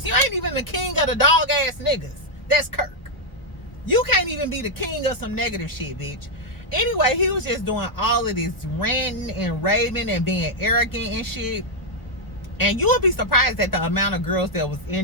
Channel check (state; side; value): late; right; 1.1 ms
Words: You ain't even the king of the dog ass niggas. That's Kirk. You can't even be the king of some negative shit, bitch. Anyway, he was just doing all of this ranting and raving and being arrogant and shit. And you will be surprised at the amount of girls that was